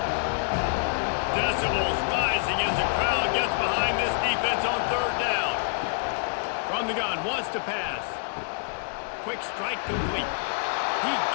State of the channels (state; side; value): silent; right; digital silence